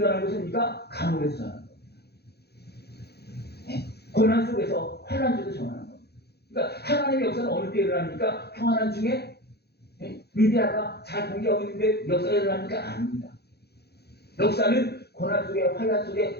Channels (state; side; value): late; right; 0.47 ms